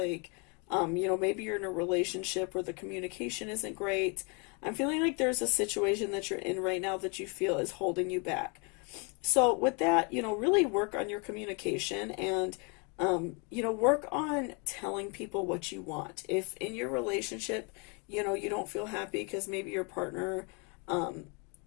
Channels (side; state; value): right; quieter; 33.5 dB